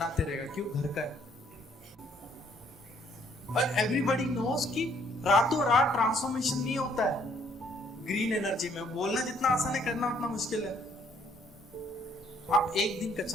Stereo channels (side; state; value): both; normal; correlation 0.65